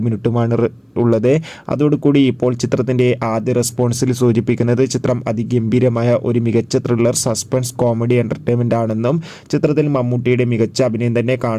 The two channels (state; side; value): identical; both; correlation 1.00